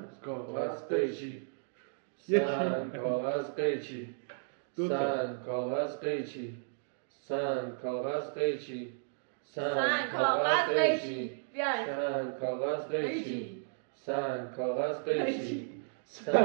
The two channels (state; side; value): silent; left; digital silence